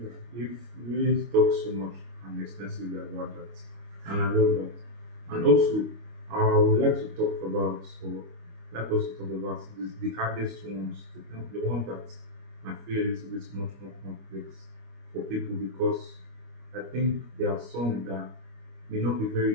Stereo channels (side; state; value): left; late; 25 ms